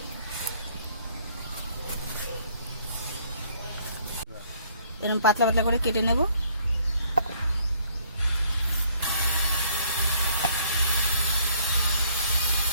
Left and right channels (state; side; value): inverted; both; correlation -0.63